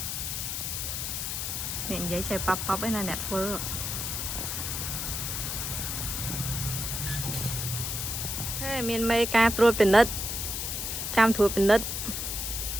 អ្នកនិយាយចេះប៉បឯណាអ្នកធ្វើមានមេការត្រួតពិនិត្យចាំត្រួតពិនិត្យ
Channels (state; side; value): noise; left; hiss, 3 dB below the sound